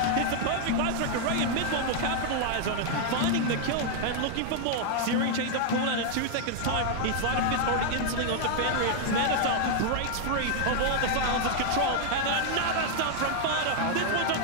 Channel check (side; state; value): both; different; correlation 0.00